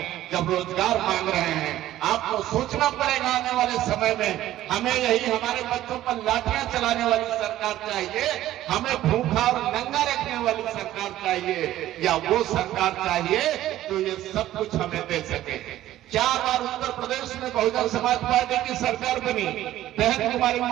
जब रोजगार मांग रहे हैं। आपको सोचना पड़ेगा आने वाले समय में हमें यही हमारे बच्चों पर लाठियां चलाने वाली सरकार चाहिए, हमें भूखा और नंगा रखने वाली सरकार चाहिए, या वो सरकार चाहिए जो ये सब कुछ हमें दे सके। 4 बार उत्तर प्रदेश में बहुजन समाज पार्टी की सरकार बनी, बहन कुमारी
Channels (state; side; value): quieter; left; 13.9 dB